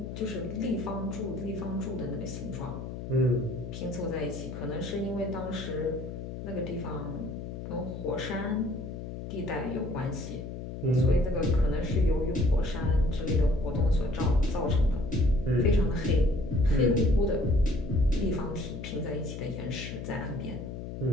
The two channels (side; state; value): left; noise; hum, 8 dB below the sound